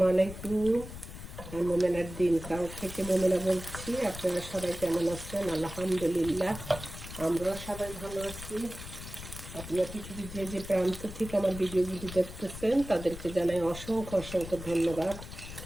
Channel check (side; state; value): left; noise; rumble, 12 dB below the sound